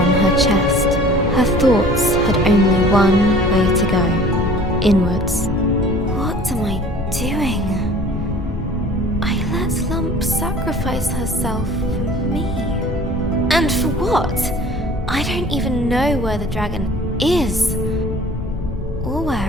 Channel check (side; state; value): both; normal; correlation 0.47